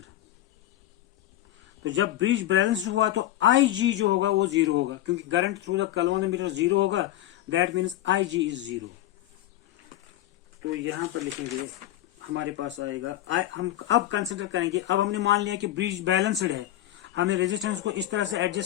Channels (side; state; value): right; quieter; 14.1 dB